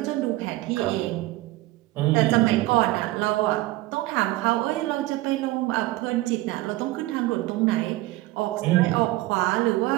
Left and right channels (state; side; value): quieter; left; 18.3 dB